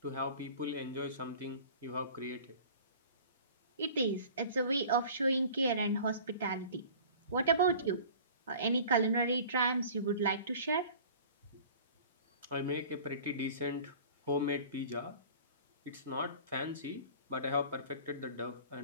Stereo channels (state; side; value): inverted; both; correlation -0.44